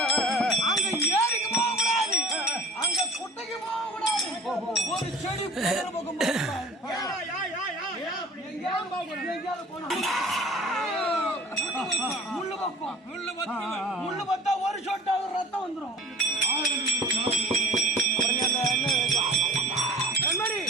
அங்க ஏரிக்கு போக கூடாது, அங்க குட்டைக்கு போக கூடாது, ஒரு செடி பக்கம் போக கூடாது. முள்ளு பத்தா ஒரு சொட்டாவது ரத்தம் வந்துடும்.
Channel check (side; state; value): both; normal; correlation 0.42